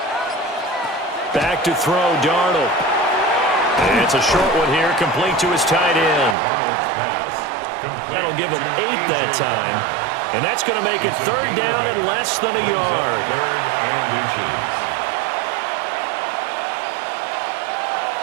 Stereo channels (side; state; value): left; drops out; at 6.4 s